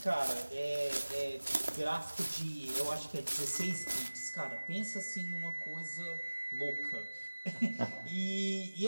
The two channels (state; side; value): inverted; both; correlation -1.00